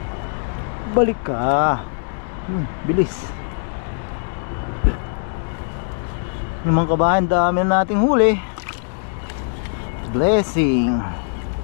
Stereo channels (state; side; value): silent; right; digital silence